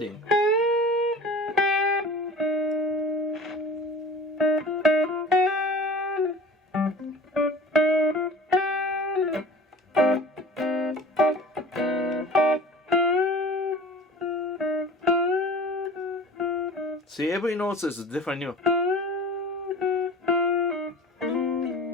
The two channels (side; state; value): both; normal; correlation 0.40